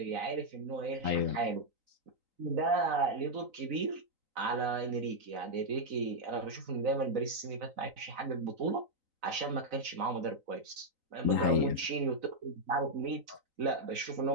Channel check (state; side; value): late; left; 4.0 ms